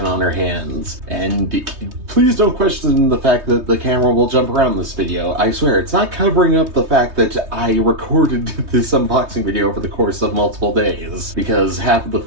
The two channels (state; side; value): late; left; 3.2 ms